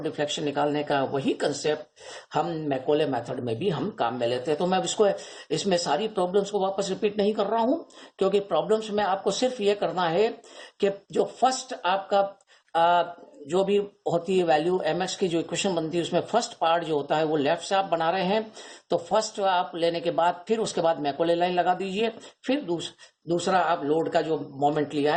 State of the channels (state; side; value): identical; both; correlation 1.00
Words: डिफ्लेक्शन निकालने का, वही कंसेप्ट हम मैकोले मेथड में भी हम काम में लेते हैं। तो मैं इसमें सारी प्रॉब्लम्स को वापस रिपीट नहीं कर रहा हूं, क्योंकि प्रॉब्लम्स में आपको सिर्फ ये करना है कि जो फर्स्ट आपका जो भी होती है वैल्यू mx की जो इक्वेशन बनती है उसमें फर्स्ट पार्ट जो होता है वो लेफ्ट से आप बना रहे हैं, तो फर्स्ट आप लेने के बाद फिर उसके बाद मैकोले लाइन लगा दीजिए, फिर दूसरा आप लोड का जो मोमेंट लिया